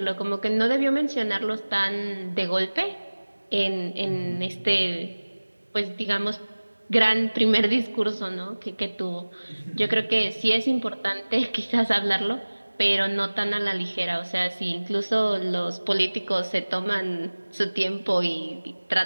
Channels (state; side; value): inverted; both; correlation -1.00